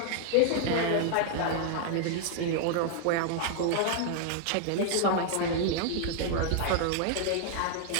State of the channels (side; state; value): both; different; correlation 0.00